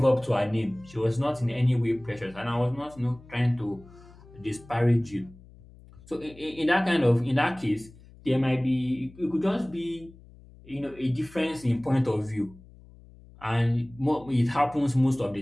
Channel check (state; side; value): noise; left; hum, 22 dB below the sound